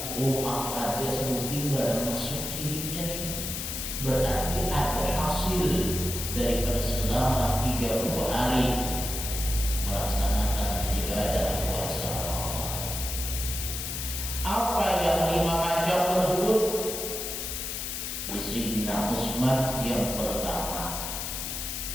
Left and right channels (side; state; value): left; noise; hiss, 4 dB below the sound